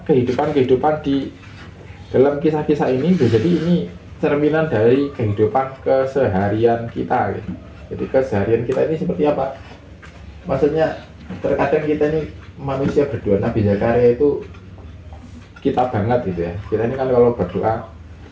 kehidupan di dalam kisah-kisah ini, jadi ini cerminan dari kehidupan keseharian kita. Gitu. Jadi keseharian kita ini seperti apa? Maksudnya terkadang kita ini manusia berdoa, Nabi Zakaria itu kita banget gitu ya. Kita ini kan kalau berdoa,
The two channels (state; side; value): identical; both; correlation 1.00